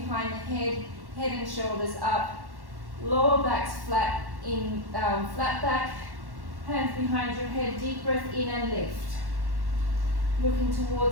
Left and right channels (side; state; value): left; late; 1.1 ms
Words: the head, head and shoulders up, lower back's flat, flat back, hands behind your head, deep breath in and lift. Looking